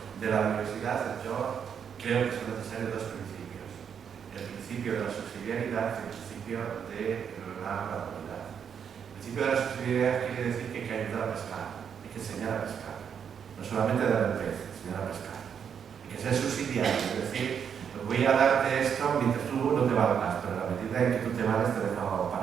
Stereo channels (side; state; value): left; quieter; 7.6 dB